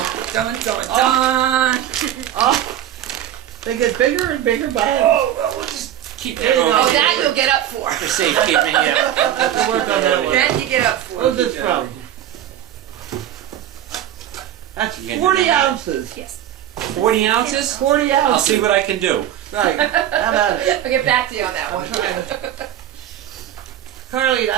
Dun, dun, dun. oh. They get bigger and bigger by Oh, well, we'll just keep that There you on. go. Oh, that you'll get up for. For safekeeping, yeah. We'll work on that one. That you get up for. Where's this from? That's You can do 40 that. ounces. Yes. 40 ounces? 40 ounces. I'll see what I can do. Right. How about it? I'll get back to you on that one. Carly,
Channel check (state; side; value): quieter; left; 11.4 dB